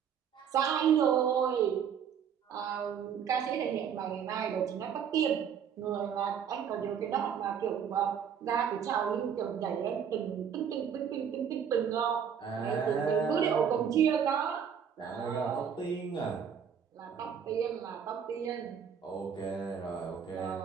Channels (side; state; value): left; quieter; 7.8 dB